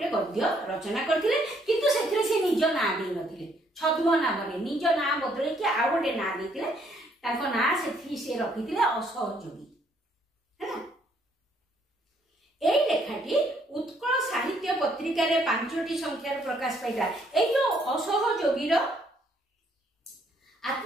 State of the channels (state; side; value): normal; both; correlation 0.68